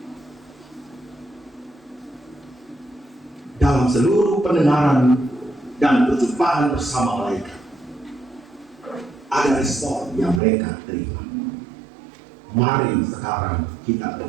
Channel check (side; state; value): left; drops out; at 10.4 s